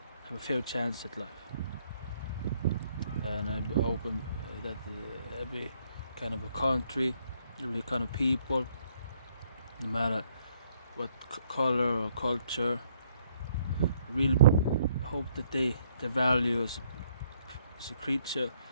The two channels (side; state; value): both; inverted; correlation -0.68